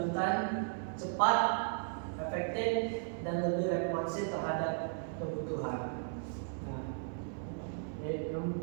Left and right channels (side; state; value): left; silent; 54 dB below the other